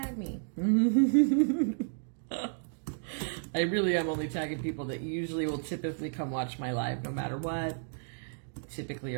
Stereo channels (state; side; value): silent; left; digital silence